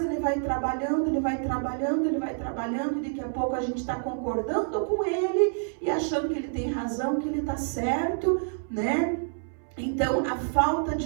ele vai trabalhando, e daqui a pouco a gente está concordando com ele e achando que ele tem razão, que ele está certo, Então, a falta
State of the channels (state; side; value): silent; left; 60 dB below the other